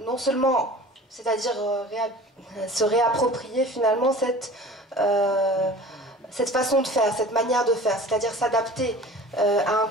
non seulement, c'est-à-dire se réapproprier finalement cette façon de faire, cette manière de faire, c'est-à-dire s'adapter à un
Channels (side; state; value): both; normal; correlation 0.42